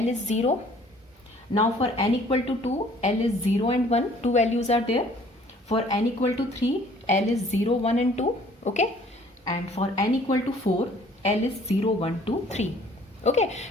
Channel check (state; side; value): normal; both; correlation 0.56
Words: is 0. Now for n equal to 2, L is 0 and 1. Two values are there. For n equal to 3, L is 0, 1 and 2. Okay. And for n equal to 4, L is 0, 1, 2, 3. Okay.